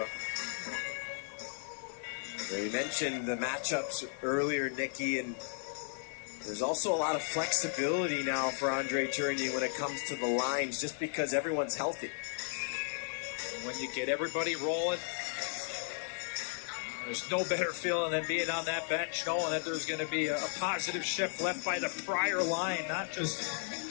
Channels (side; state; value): right; silent; digital silence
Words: We mentioned the matchups earlier, Nicky, and there's also a lot of flexibility now for Andre Tourigny when it comes to the lines, just because everyone's healthy. When you get everybody rolling, There's no better feeling than being on that bench, knowing that there's going to be a positive shift left by the prior line, not just